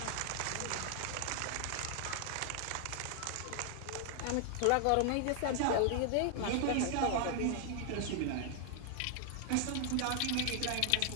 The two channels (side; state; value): both; different; correlation 0.00